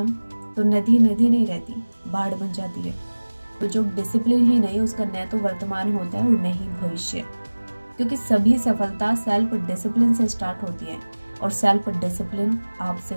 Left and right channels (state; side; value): inverted; both; correlation -1.00